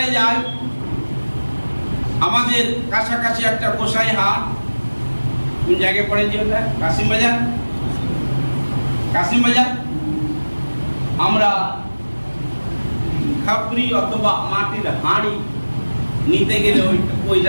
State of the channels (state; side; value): inverted; both; correlation -1.00